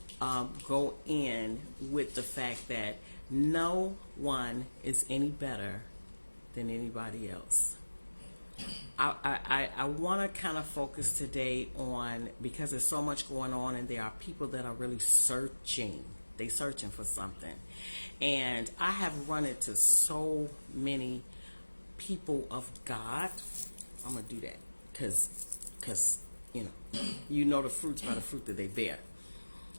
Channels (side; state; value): both; inverted; correlation -1.00